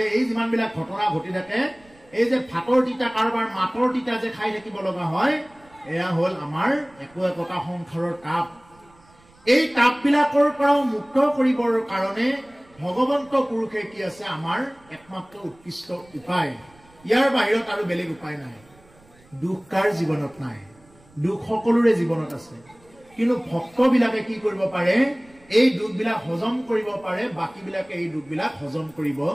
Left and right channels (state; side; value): noise; right; rumble, 29 dB below the sound